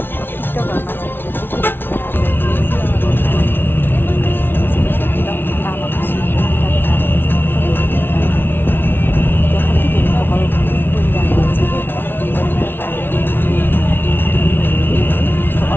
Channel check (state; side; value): late; right; 0.10 ms